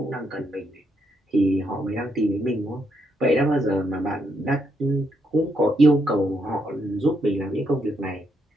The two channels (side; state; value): both; normal; correlation 0.78